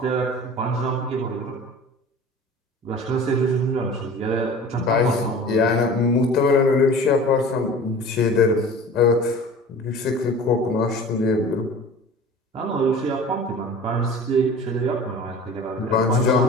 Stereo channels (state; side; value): normal; both; correlation 0.41